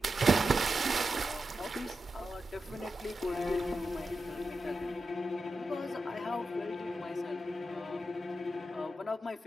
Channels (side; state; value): both; normal; correlation 0.89